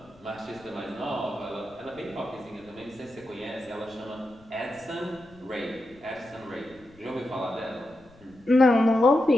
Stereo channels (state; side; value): noise; left; rumble, 27 dB below the sound